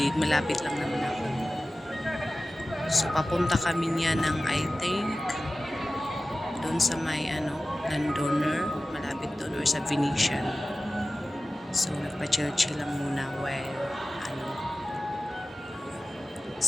Malapit lang naman ako. So, papunta kami niya ng, I think, doon sa may landowner, malapit doon, or sa Venetian. So, nagpa-chill-chill lang muna while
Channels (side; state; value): both; normal; correlation 0.95